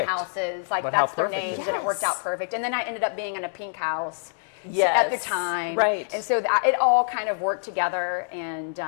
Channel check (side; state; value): right; silent; digital silence